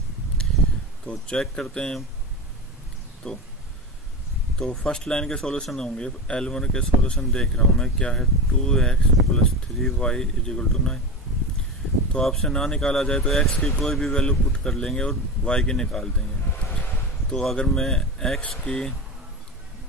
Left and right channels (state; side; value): normal; both; correlation 0.24